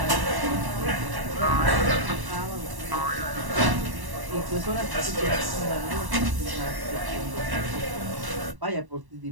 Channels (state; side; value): late; left; 1.1 ms